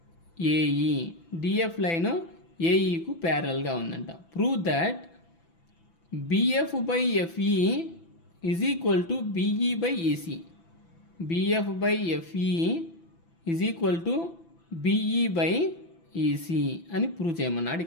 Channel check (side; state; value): right; late; 6.0 ms